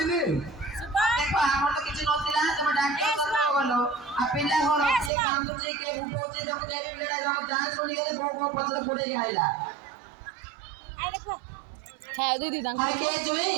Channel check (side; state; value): left; drops out; at 5.1 s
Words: ने ଦେଖ ଆମର ତ କିଛି ନଥିଲା ତମେ ଡାକ୍ତର କଥା ଗଲ ଆଉ ପିଲା ଘର କିଏ କାନ୍ଦୁଛି କିଏ ବୁବଉଛି ତମେ ଯେ ପିଲାଟା ଯখন ଯାଞ୍ଚ କରି ଗଲେ ବୋଉ ବୋଉ ପଛରେ ଗୋଡେଇକି ଆଇଲା হ্যাঁ দিদি দাম আরে কে জুই